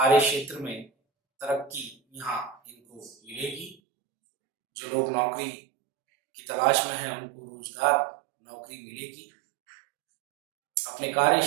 क्षेत्र में तरक्की यहाँ इनको मिलेगी। जो लोग नौकरी की तलाश में हैं उनको रोजगार, नौकरी मिलेगी। अपने कार्य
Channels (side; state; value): left; drops out; at 3.8 s